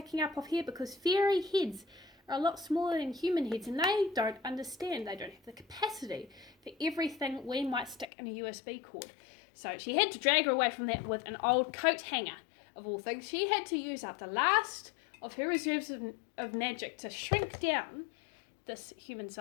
up off here, because fairy heads are a lot smaller than human heads, and they don't understand, they don't have the capacity for everything we might stick in a USB cord. So she had to drag her away from that with an old coat hanger, of all things. She had to use up the last of her reserves of magic to shrink down this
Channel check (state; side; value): drops out; right; at 8.1 s